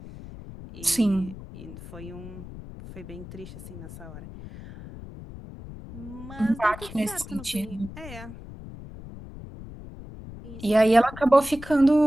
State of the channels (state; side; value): noise; left; rumble, 14 dB below the sound